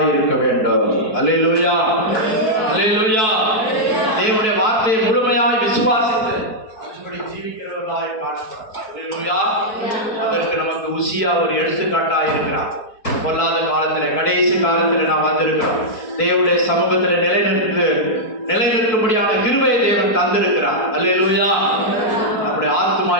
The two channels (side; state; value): right; late; 4.6 ms